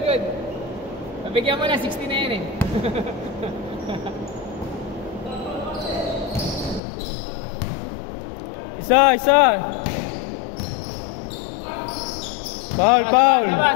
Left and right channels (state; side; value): drops out; right; at 6.8 s